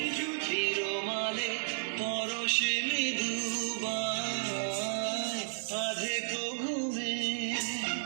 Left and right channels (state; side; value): silent; left; 56 dB below the other